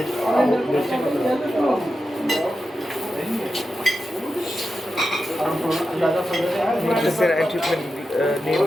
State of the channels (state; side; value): normal; both; correlation 0.90